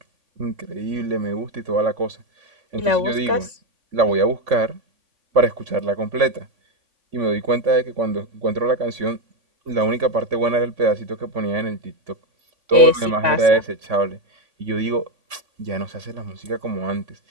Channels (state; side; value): late; left; 3.5 ms